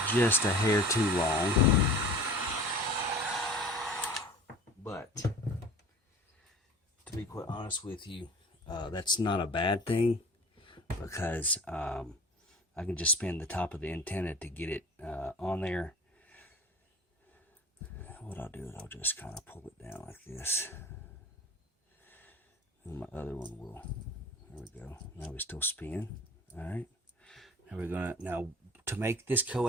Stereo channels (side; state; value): both; normal; correlation 0.41